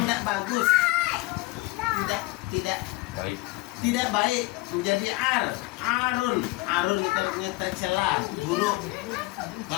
tidak bagus, tidak baik, menjadi arun itu artinya tercela, buruk.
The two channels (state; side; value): quieter; right; 22.4 dB